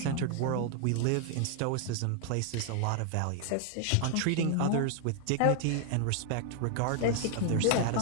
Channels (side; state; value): both; different; correlation 0.00